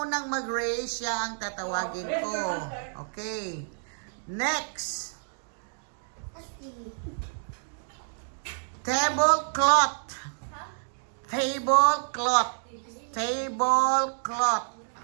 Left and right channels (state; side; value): silent; left; digital silence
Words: unang mag-raise, siya ang tatawagin ko. Okay. Next. Tablecloth. Tablecloth. Tablecloth.